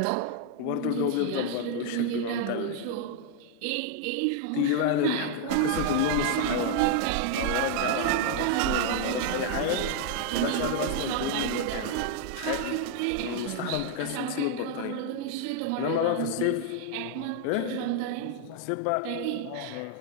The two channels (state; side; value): different; both; correlation 0.00